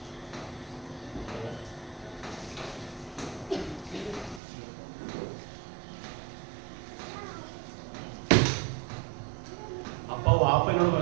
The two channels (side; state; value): left; drops out; at 4.4 s